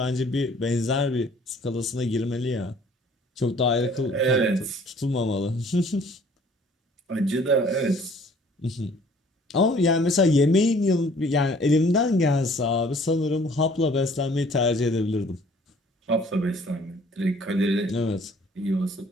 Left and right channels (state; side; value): normal; both; correlation 0.56